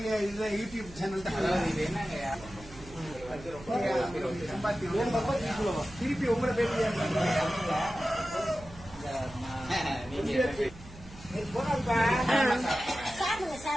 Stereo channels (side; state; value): right; noise; hum, 18 dB below the sound